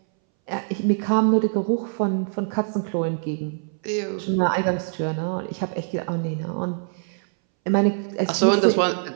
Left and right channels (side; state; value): left; silent; 61 dB below the other